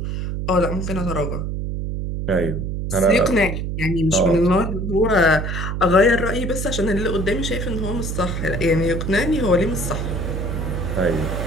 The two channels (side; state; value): right; noise; hum, 3 dB below the sound